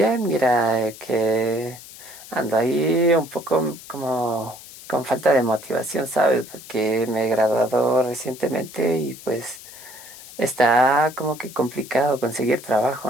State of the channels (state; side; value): noise; left; hiss, 17 dB below the sound